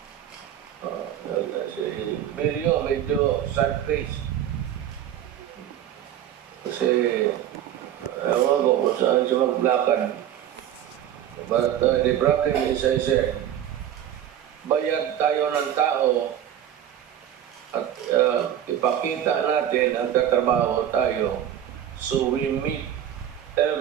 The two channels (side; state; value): left; quieter; 10.7 dB